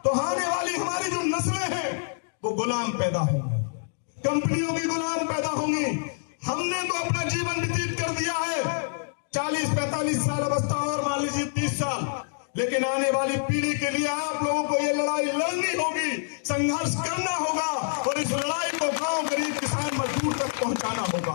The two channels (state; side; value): silent; right; digital silence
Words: तो आने वाली हमारी जो नस्लें हैं वो गुलाम पैदा होंगी, कंपनियों की गुलाम पैदा होंगी। हमने तो अपना जीवन व्यतीत कर दिया है 40-45 साल अवस्था और मान लीजिए 30 साल, लेकिन आने वाली पीढ़ी के लिए आप लोगों को ये लड़ाई लड़नी होगी, संघर्ष करना होगा और इस लड़ाई को गांव, गरीब, किसान, मजदूर तक पहुंचाना